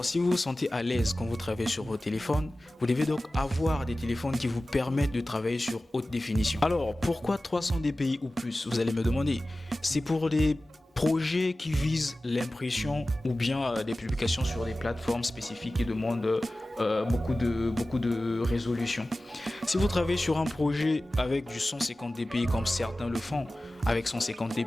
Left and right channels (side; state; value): both; normal; correlation 0.96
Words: si vous vous sentez à l'aise quand vous travaillez sur vos téléphones, vous devez donc avoir des téléphones qui vous permettent de travailler sur haute définition. Alors, pourquoi 300 dpi ou plus, vous allez me demander? C'est pour des projets qui visent l'impression ou bien des publications sur des plateformes spécifiques qui demandent beaucoup de résolution. Si vous travaillez sur un projet avec du 150 dpi comme certains le font, avec 150